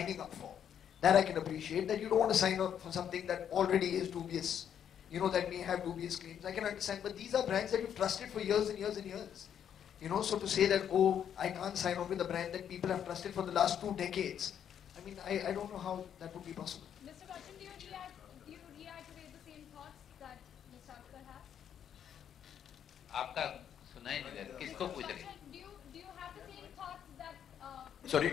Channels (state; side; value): quieter; right; 9.0 dB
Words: up for. That I can appreciate, that you don't want to sign up for something that already is dubious, that may have dubious claims. I can understand, but these are brands that you've trusted for years and years and years. So to say that, oh, I can't sign on with a brand that people have trusted for the last 2 decades, I don't know how that would be possible. Mr. Bachchan, do you reiterate the same thoughts that Mr. Akhtar has? आपका सुना ही नहीं दे रहा, किसको पूछ रही? Do you have the same thoughts that Sorry,